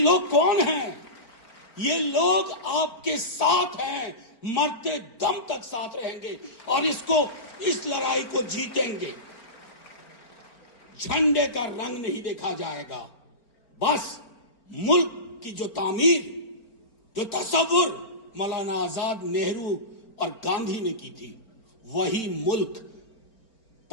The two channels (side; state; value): right; late; 4.4 ms